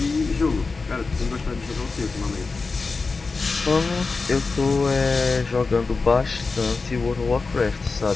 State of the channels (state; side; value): quieter; right; 4.1 dB